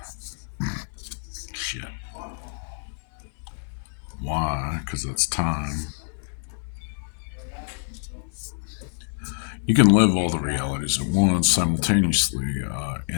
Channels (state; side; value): silent; right; digital silence